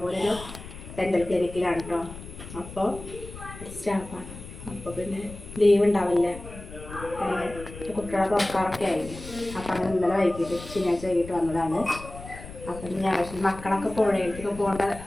ഡെൻ്റൽ ക്ലിനിക്കിലാണ് കേട്ടോ. അപ്പോൾ സ്റ്റാഫാണ്. അപ്പോൾ പിന്നെ ലീവ് ഉണ്ടാവില്ല, കുട്ടികളെ തുറക്കാറൊക്കെ ആയില്ലേ. അപ്പം അങ്ങനെ ഇന്നലെ വൈകിട്ട് ശനിയാഴ്ച വൈകിട്ട് വന്നതാണ്. അപ്പം ഞാൻ മക്കളൊക്കെ പുഴയിലേക്കൊക്കെ പോകേണ്ട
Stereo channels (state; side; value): noise; left; rumble, 13 dB below the sound